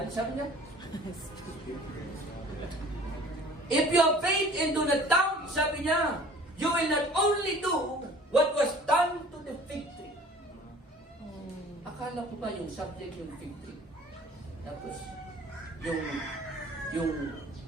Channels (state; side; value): normal; both; correlation 0.49